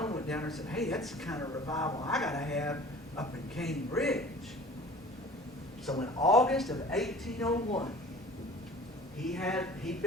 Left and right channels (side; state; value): both; normal; correlation 0.45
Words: went down there and said, hey, that's the kind of revival I got to have up in Cane Ridge. So in August of 1801, he'd